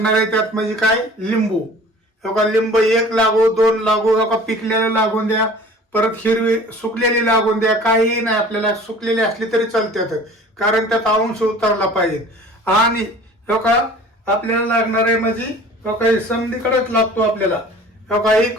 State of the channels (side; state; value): both; normal; correlation 0.46